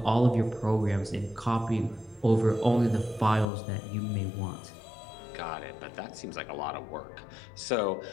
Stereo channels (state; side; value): drops out; right; at 3.5 s